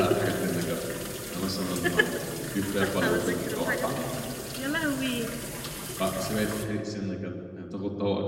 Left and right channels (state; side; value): identical; both; correlation 1.00